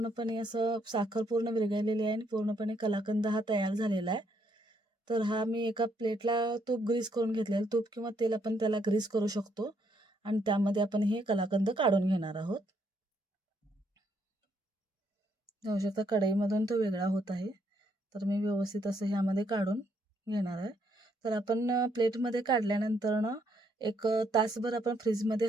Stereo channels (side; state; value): both; normal; correlation 0.73